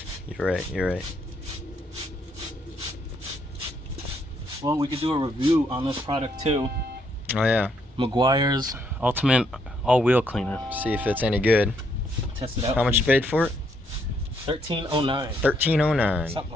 You're right, you're right. Well, we could do a review on this product too. Oh yeah. Meguiar's Ultimate All-Wheel Cleaner. See if it's any good. Test it out. How much you paid for it? $13.09. $13.09. Something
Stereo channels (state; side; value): normal; both; correlation 0.73